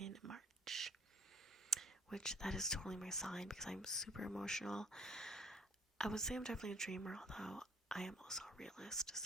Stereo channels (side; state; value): both; normal; correlation 0.55